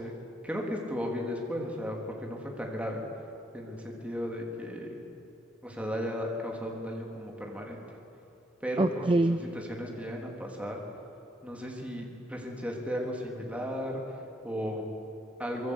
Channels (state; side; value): normal; both; correlation 0.73